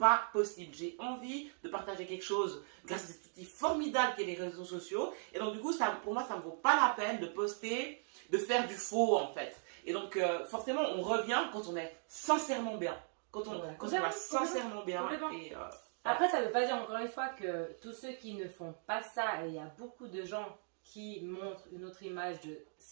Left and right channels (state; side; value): silent; left; 52 dB below the other